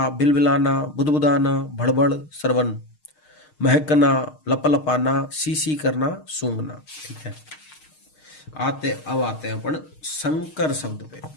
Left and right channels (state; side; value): late; right; 6.5 ms